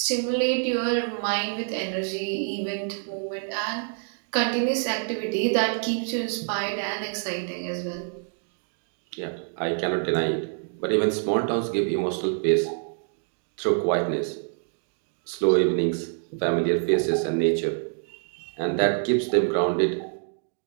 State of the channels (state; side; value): silent; left; 61 dB below the other